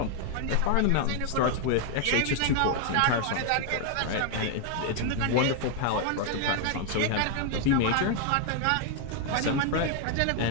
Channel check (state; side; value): different; both; correlation 0.00